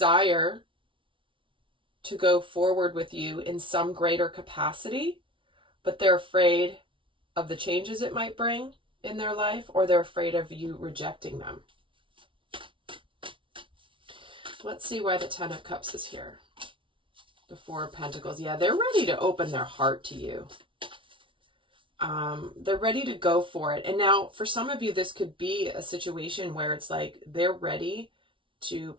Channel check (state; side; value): late; left; 0.25 ms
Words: to go forward with you in some greater capacity, but they're afraid of the changes it might bring in their life, or they're afraid of you rejecting them. Let's see why the Ten of Cups is here. The Four of Pentacles. Yeah, they're ready to open their heart to you. They're ready to go for it. And now, for some of you, this could be a situation where it's like they're ready to